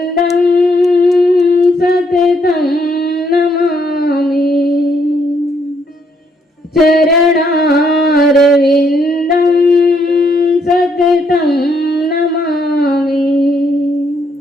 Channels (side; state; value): both; normal; correlation 0.73